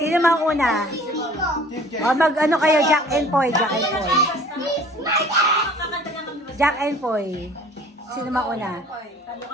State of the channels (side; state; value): both; normal; correlation 0.50